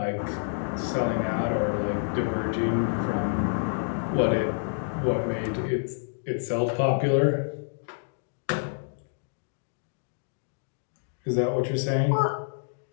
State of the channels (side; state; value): right; silent; digital silence